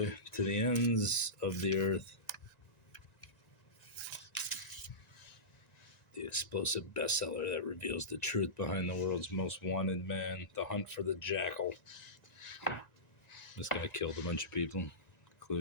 To the ends of the earth. The explosive bestseller that reveals the truth behind the world's most wanted man. The hunt for the jackal. This guy killed a bunch of people,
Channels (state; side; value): late; right; 1.9 ms